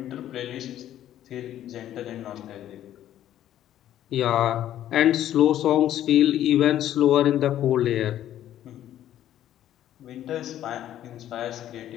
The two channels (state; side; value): quieter; right; 11.9 dB